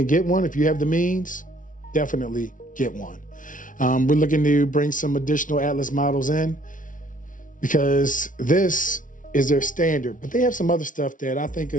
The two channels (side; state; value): right; late; 0.38 ms